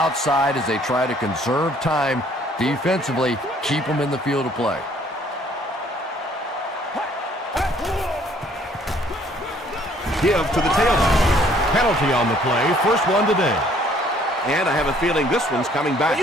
as they try to conserve time defensively, keep them in the field of play. Give to the tailback. Penalty on the play. First one today. And I have a feeling this one's coming back.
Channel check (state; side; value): normal; both; correlation 0.61